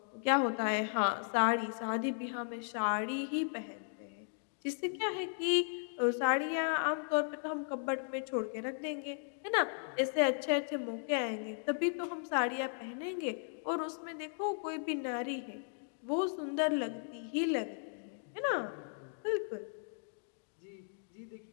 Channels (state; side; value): silent; right; digital silence